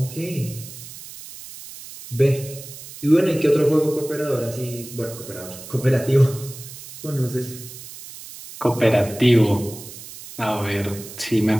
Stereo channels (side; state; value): right; noise; hiss, 14 dB below the sound